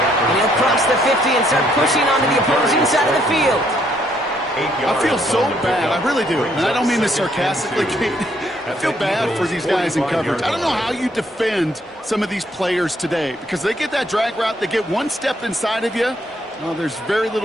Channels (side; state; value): both; normal; correlation 0.69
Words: And he'll cross the 50 and start pushing onto the opposing side of the field. I feel so bad. I really do. And I don't mean this sarcastically, Kate. I feel bad for these guys in coverage. I don't know how you defend some of these players today because they get that drag route, they get one step inside of you. Well, there's very